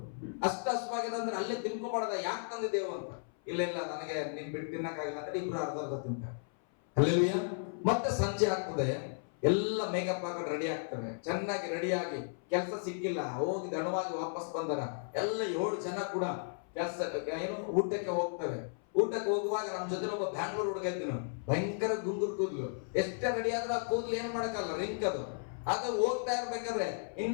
ಅಷ್ಟು ಹಸುವಾಗಿದೆ ಅಂದ್ರೆ ಅಲ್ಲೇ ತಿನ್ಕೋಬಾರ್ದ, ಯಾಕೆ ತಂದಿದ್ದೇವು ಅಂತ. ಇಲ್ಲ ನನಗೆ ನೀನ್ ಬಿಟ್ಟು ತಿನ್ನಕ್ಕಾಗಿಲ್ಲ ಅಂದ್ರೆ ಇಬ್ರು ಅರ್ಧ ತಿಂತಾರೆ. ಅಲ್ಲೆಲ್ಲೂಯ್ಯ. ಮತ್ತೆ ಸಂಜೆ ಆಗ್ತದೆ, ಎಲ್ಲ ಮೇಕಪ್ ಹಾಕೊಂಡು ರೆಡಿ ಆಗ್ತವೆ, ಚೆನ್ನಾಗಿ ರೆಡಿಯಾಗಿ, ಕೆಲಸ ಸಿಕ್ಕಿಲ್ಲ, ಹೋಗಿ ದಣವಾಗಿ ವಾಪಸ್ ಬಂದರ ಎಲ್ಲ 7 ಜನ ಕೂಡ ಊಟಕ್ಕೆ ಹೋಗ್ತವೆ. ಊಟಕ್ಕೆ ಹೋಗುವಾಗ ನಮ್ಮ ಜೊತೆ ಒಬ್ಬ ಬ್ಯಾಂಗ್ಳೂರ್ ಹುಡುಗ ಇದ್ದೀನು, ಭಯಂಕರ ಗುಂಗುರು ಕೂದ್ಲು. ಎಷ್ಟೇ ರೆಡಿ ಆದ್ರೂ ಆ ಕೂದ್ಲು ಏನ್ ಮಾಡಕ್ಕಲ್ಲ, ರಿಂಕ್ ಅದು ಹೋಗ್ತಾ ಇರ್ಬೇಕಾದ್ರೆ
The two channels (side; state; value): right; silent; 55 dB below the other